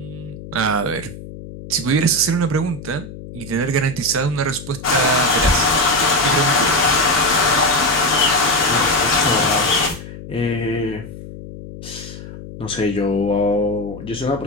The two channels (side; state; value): left; noise; hum, 13 dB below the sound